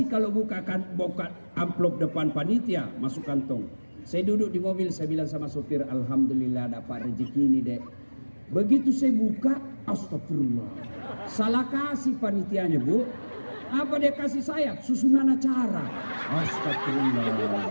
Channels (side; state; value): both; inverted; correlation -1.00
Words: kalau buka amplop depan panitia, masuk kantong. Saya duduk di mobil, saya bilang sama sopir, alhamdulillah dapat rezeki ini dek. Begitu saya buka, astagfirullah. Salah kasih panitianya bu. Apa dia kasih saya? Susunan acara. Astagfirullah.